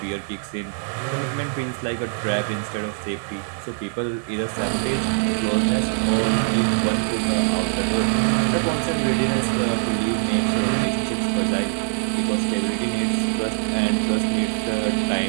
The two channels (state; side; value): silent; left; digital silence